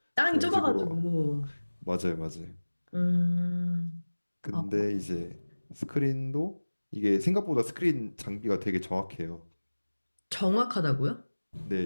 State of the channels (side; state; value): both; inverted; correlation -1.00